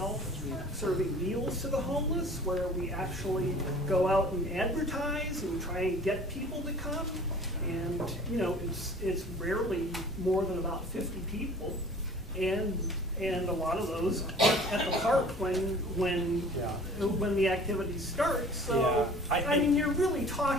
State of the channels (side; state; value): both; normal; correlation 0.47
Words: serving meals to the homeless, where we actually go out and advertise and try and get people to come. And, you know, it's rarely more than about 50 people. And a lot of those aren't at the park when the activity starts. So, yeah. I mean, you're really